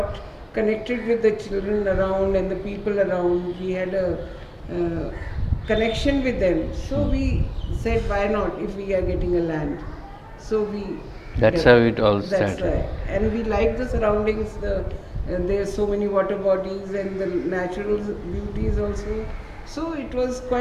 connected with the children around and the people around. We had a connection with them. So we said, why not if we are getting a land? So we. That's how it all That's started. right. And we like the surroundings. There's so many water bodies and the natural beauties also. So it was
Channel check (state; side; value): identical; both; correlation 1.00